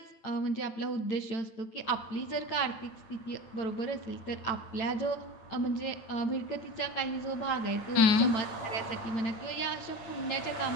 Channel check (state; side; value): late; right; 8.9 ms